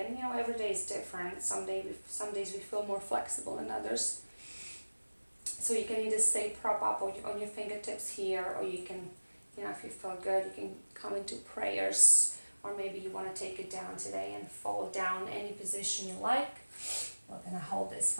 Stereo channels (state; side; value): inverted; both; correlation -1.00